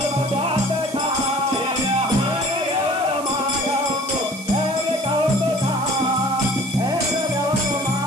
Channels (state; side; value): noise; right; hiss, 15 dB below the sound